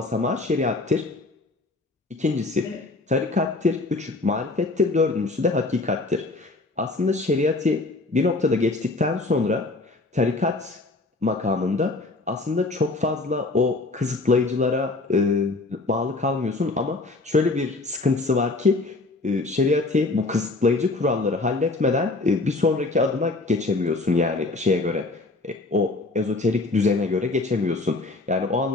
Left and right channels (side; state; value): right; quieter; 3.3 dB